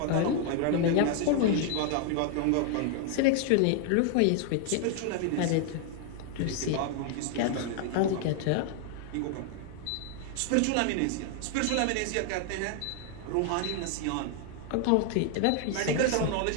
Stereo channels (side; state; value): both; different; correlation 0.00